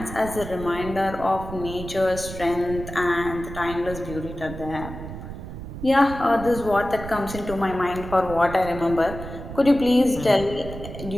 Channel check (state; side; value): noise; right; rumble, 10 dB below the sound